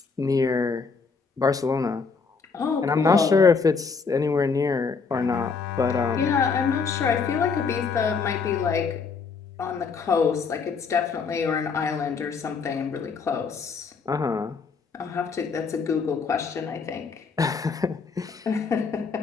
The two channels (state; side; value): quieter; right; 5.1 dB